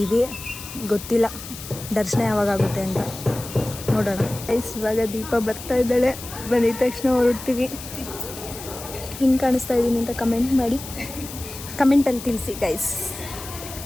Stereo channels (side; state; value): left; noise; hiss, 12 dB below the sound